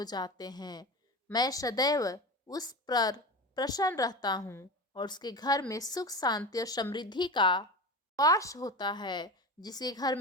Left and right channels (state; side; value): normal; both; correlation 0.27